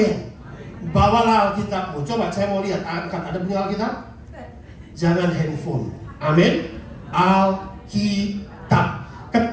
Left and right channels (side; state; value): both; identical; correlation 1.00